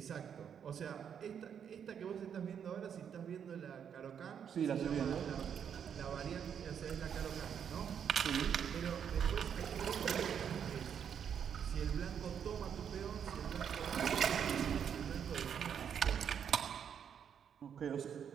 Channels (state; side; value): quieter; left; 8.1 dB